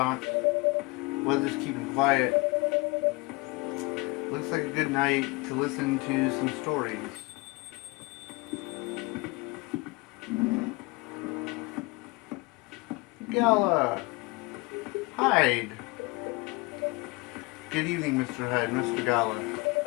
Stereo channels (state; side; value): quieter; right; 25.4 dB